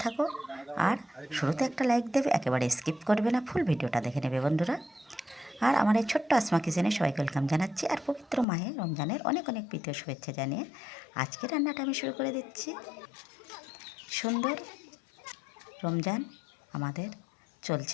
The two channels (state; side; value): drops out; right; at 8.5 s